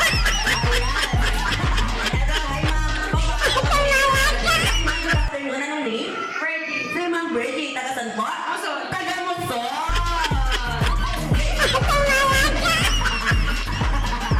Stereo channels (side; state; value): both; identical; correlation 1.00